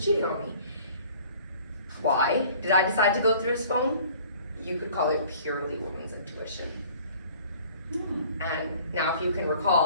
on me. Why did I decide to go through his phone? You could call it purely woman's intuition. And now if you can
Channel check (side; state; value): both; inverted; correlation -0.51